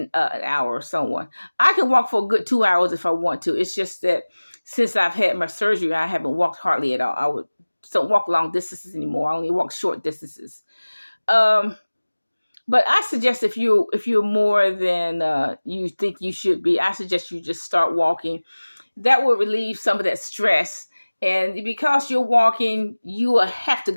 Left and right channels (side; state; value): both; inverted; correlation -1.00